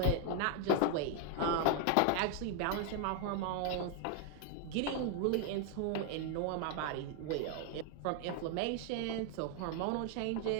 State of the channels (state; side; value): different; both; correlation 0.00